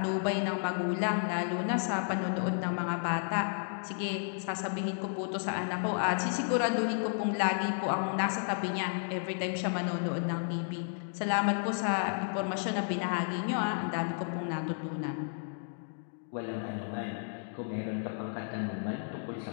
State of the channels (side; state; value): right; silent; digital silence